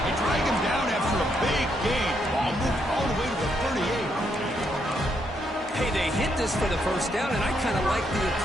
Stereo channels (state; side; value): normal; both; correlation 0.76